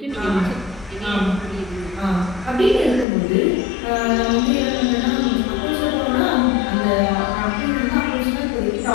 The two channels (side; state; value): right; drops out; at 3.1 s